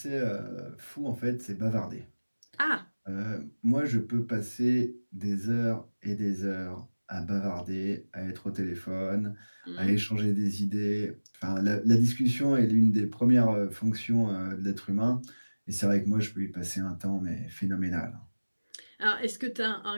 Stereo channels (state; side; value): inverted; both; correlation -1.00